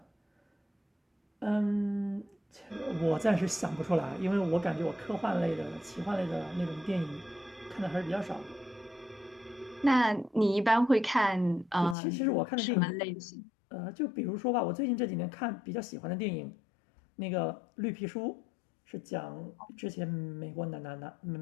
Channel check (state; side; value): drops out; right; at 12.0 s